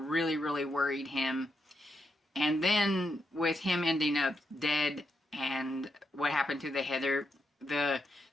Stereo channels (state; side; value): normal; both; correlation 0.83